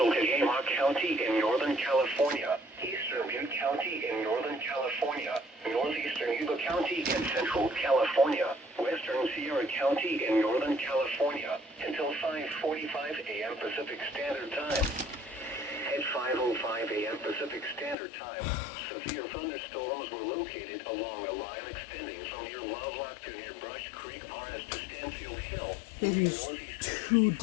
Tehama County in Northern California, Eastern Butte County in Northern California, Northeastern Yuba County in Central California, Western Sierra County in Northern California, until 5:45 a.m. Pacific Standard Time. At 5:05 a.m. Pacific Standard Time, severe thunderstorms were located along a line extending from near Lovelock to near Brush Creek RS to Stanfield Hill. It is too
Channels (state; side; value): drops out; right; at 17.9 s